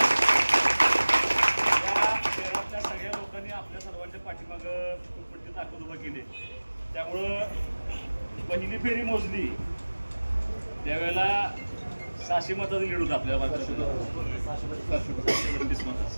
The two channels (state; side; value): inverted; both; correlation -1.00